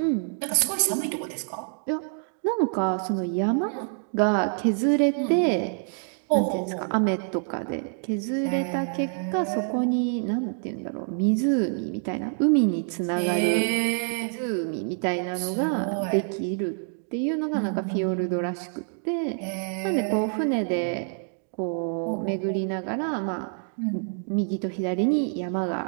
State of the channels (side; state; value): left; silent; 58 dB below the other